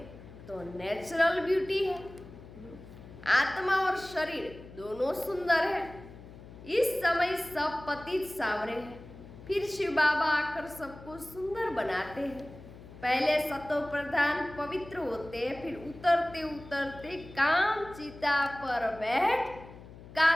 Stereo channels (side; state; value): left; noise; hum, 17 dB below the sound